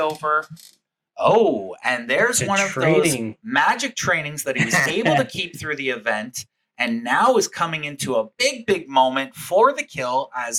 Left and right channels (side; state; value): both; identical; correlation 1.00